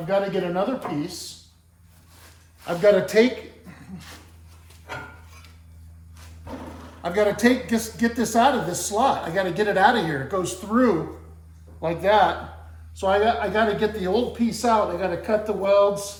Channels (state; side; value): identical; both; correlation 1.00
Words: got to get another piece. I've got to get this out of this slot. I got to get it out of here. It goes through like that. So I got to get the old piece out. I got to cut the